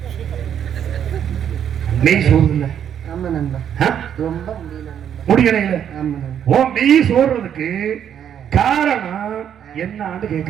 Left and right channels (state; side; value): quieter; left; 9.1 dB